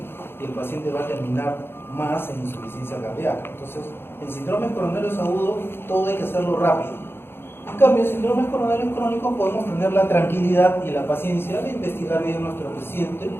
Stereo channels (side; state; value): right; late; 0.11 ms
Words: y el paciente va a terminar más en insuficiencia cardíaca. Entonces, en síndromes coronarios agudos, todo hay que hacerlo rápido. En cambio, en síndromes coronarios crónicos podemos tener la tranquilidad y la paciencia de investigar bien a nuestro paciente,